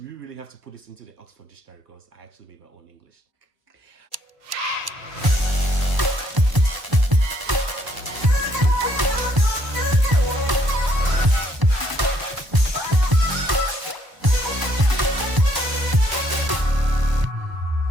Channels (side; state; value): left; late; 1.0 ms